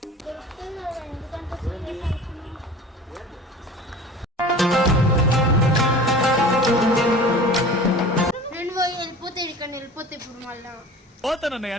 నేను పోయి వెళ్ళిపోతే ఇక్కడ వెళ్ళిపోతే ఇప్పుడు మళ్ళా పోతానన్నయ్య,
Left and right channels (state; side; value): normal; both; correlation 0.40